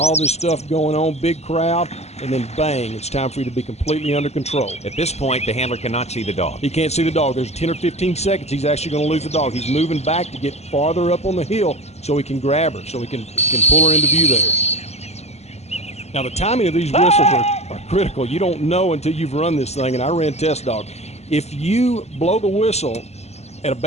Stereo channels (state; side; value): late; right; 0.31 ms